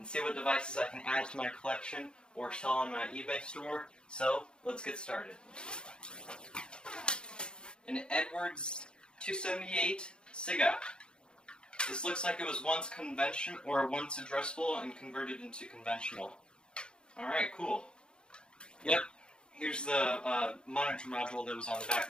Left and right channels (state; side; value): late; right; 0.051 ms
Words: see what devices I can add to my collection or sell on my eBay store. So, let's get started. An Edwards 278 SIGA. This looks like it was once addressable and converted into conventional. Alright, cool. Yep, here's the monitor module that was on the back